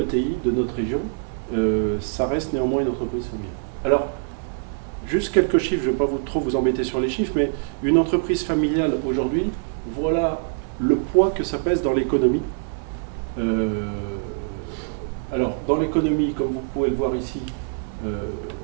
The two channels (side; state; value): left; silent; digital silence